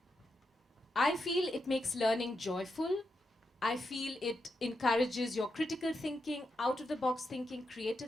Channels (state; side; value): normal; both; correlation 0.85